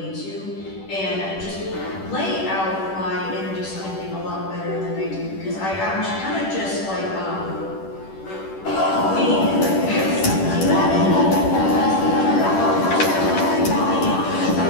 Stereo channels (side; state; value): right; late; 10 ms